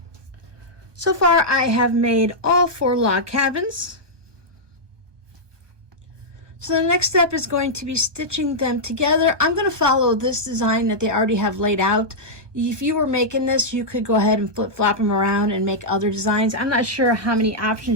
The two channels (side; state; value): left; late; 1.2 ms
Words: So far, I have made all 4 log cabins. So the next step is going to be stitching them together. I'm going to follow this design that they already have laid out. If you were making this, you could go ahead and flip-flop them around and make other designs. I'm not sure how many